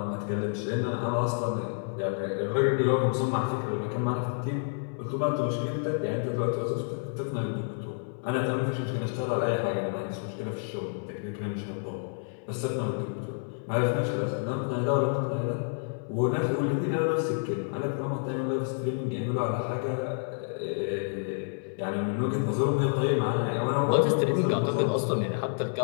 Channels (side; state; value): right; silent; 59 dB below the other